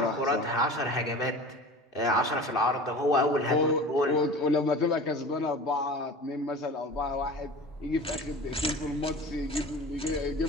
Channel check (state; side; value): normal; both; correlation 0.37